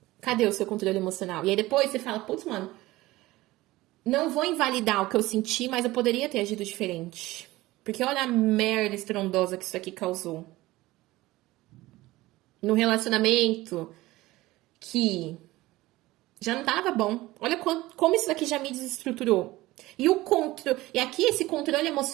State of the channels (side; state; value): left; quieter; 18.5 dB